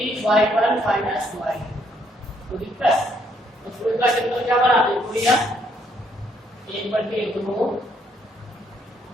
y1 minus y2। तो दिक्कत तो फिर का क्षेत्रफल क्या बना देखो भैया 1/2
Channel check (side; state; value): both; normal; correlation 0.70